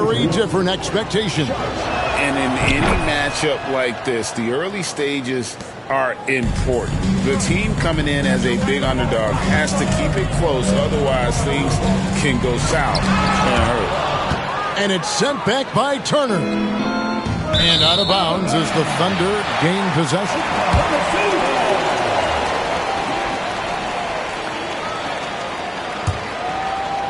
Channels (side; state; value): both; identical; correlation 1.00